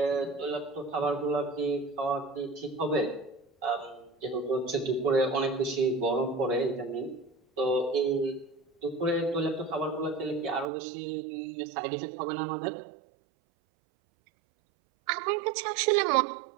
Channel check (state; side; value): drops out; left; at 10.7 s